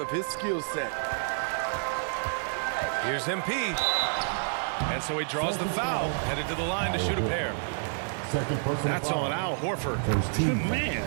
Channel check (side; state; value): left; silent; 56 dB below the other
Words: his skill set. Here's MP. And so he draws the foul, headed to the line to shoot a pair. That's on Al Horford. Man,